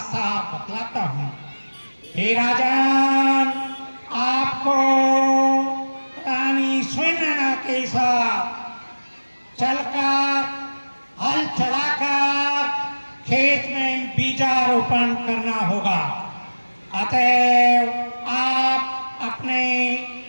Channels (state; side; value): inverted; both; correlation -1.00